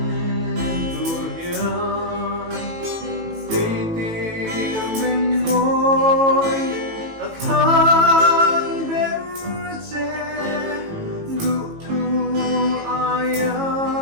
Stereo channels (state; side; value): late; left; 18 ms